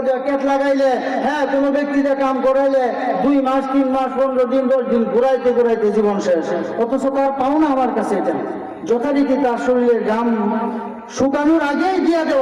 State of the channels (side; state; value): both; identical; correlation 1.00